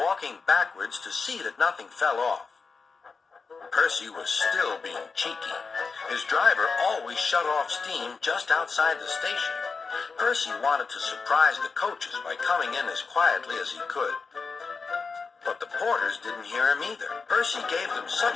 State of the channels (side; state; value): right; quieter; 4.7 dB